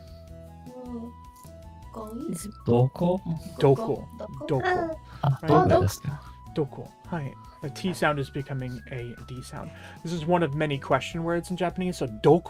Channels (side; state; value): both; identical; correlation 1.00